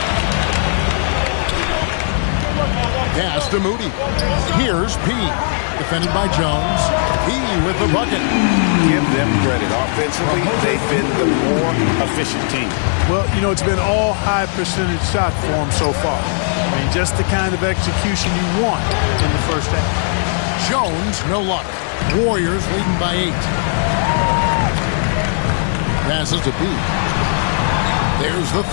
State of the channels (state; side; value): silent; right; 59 dB below the other